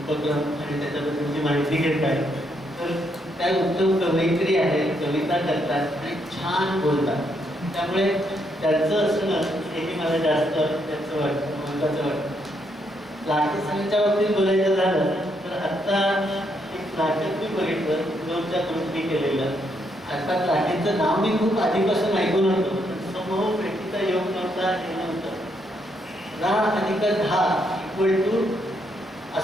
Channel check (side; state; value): both; normal; correlation 0.76